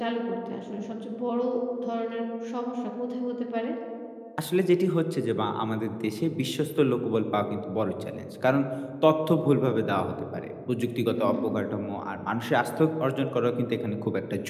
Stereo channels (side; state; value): both; identical; correlation 1.00